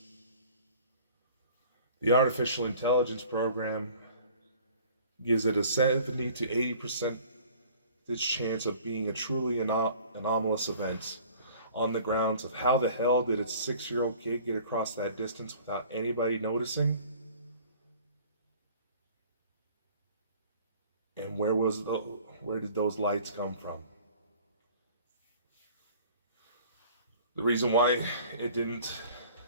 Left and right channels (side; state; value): both; inverted; correlation -0.49